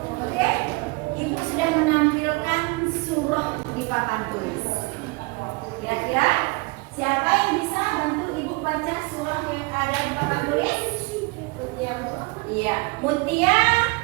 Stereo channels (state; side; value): quieter; left; 27.1 dB